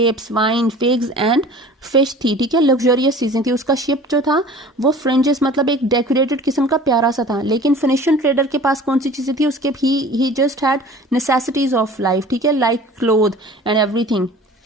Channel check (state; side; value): normal; both; correlation 0.44